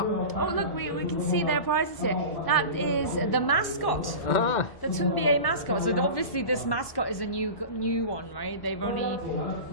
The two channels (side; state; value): right; late; 1.1 ms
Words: Oh, look, we can see their prizes here. That is the mascot, the Tunbia mascot. So obviously this mascot is a new one, right?